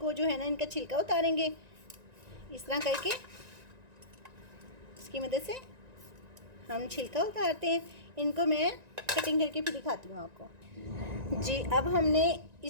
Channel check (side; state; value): left; late; 1.9 ms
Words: जो है ना इनका छिलका उतारेंगे इस तरह करके। इसकी मदद से हम छिलका उतारते हैं। इनको मैं कटिंग करके फिर दिखाती हूँ आपको जी। अब हमने